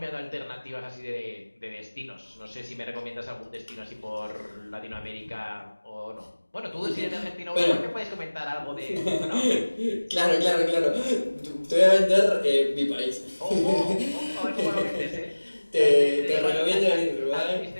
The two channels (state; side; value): inverted; both; correlation -1.00